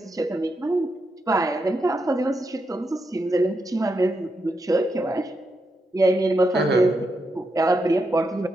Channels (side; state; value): both; normal; correlation 0.84